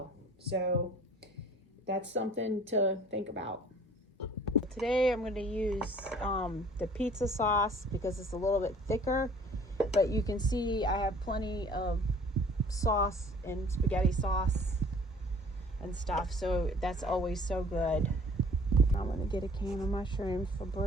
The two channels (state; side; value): normal; both; correlation 0.52